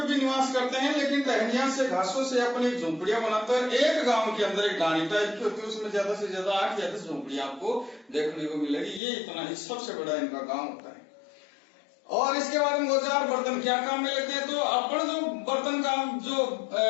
भी निवास करते हैं लेकिन टहनियां से, घासों से अपनी झोंपड़ियां बनाते हैं। एक गांव के अंदर एक डानी टाइप की होती है, उसमें ज्यादा से ज्यादा 8 या 10 झोंपड़ियां आपको देखने को मिलेगी। ये इतना ही सबसे बड़ा इनका गांव होता है। और इसके बाद में औजार बर्तन क्या काम में लेते हैं, तो अपन जो बर्तन का जो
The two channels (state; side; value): drops out; right; at 9.0 s